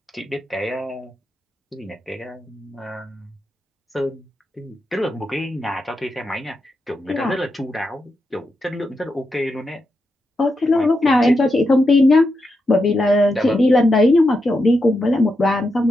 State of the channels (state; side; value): normal; both; correlation 0.86